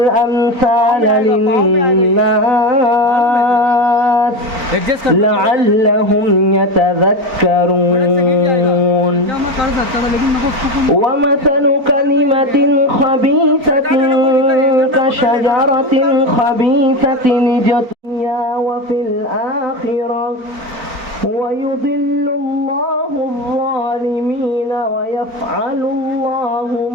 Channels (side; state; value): left; late; 4.4 ms